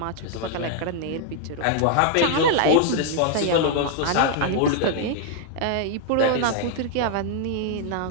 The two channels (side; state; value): both; different; correlation 0.00